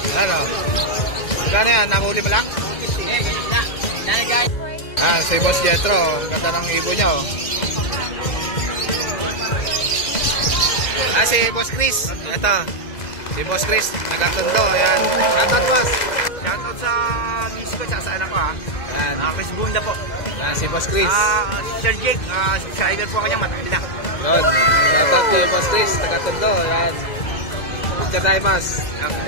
Ano? Gano'n yan? Namuli mo lang? Si Boss Jetro. Ang ganda ng ibon niya oh. Si Boss Chris. Ito. Si Boss Chris. Nagatundo. Ayan. Shoutout boss. Shoutout sa miss ko at sa anak ko ha. Ayan. Chris Bunda po. Ayan si Boss Chris. Sir Jake, subscriber po kanya, matagal na. Yun. Shoutout kay Boss Chris. Nagatundo. Ayan. Picture tayo boss.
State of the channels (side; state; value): right; late; 2.0 ms